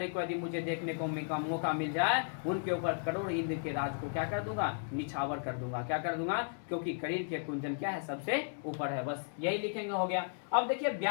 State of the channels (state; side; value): silent; right; digital silence